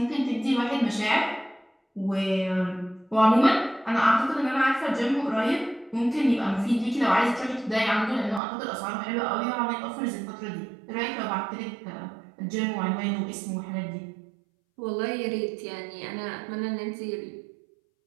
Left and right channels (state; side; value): drops out; left; at 8.4 s